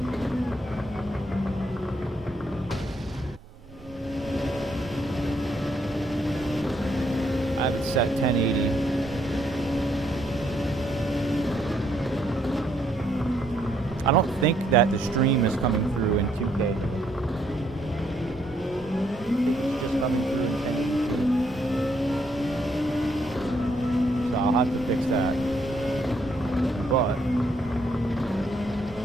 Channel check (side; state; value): both; normal; correlation 0.72